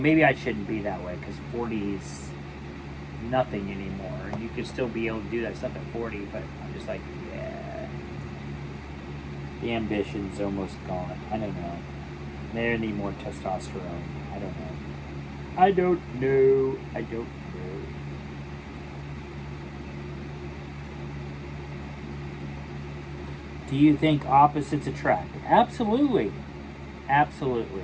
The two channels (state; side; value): identical; both; correlation 1.00